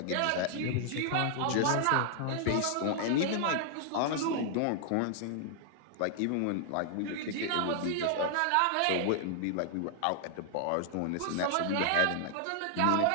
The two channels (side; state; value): both; different; correlation 0.00